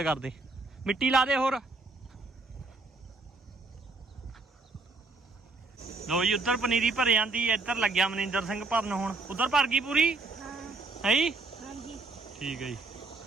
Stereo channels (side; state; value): left; quieter; 3.6 dB